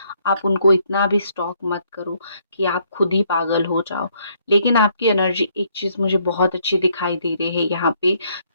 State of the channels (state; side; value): inverted; both; correlation -0.69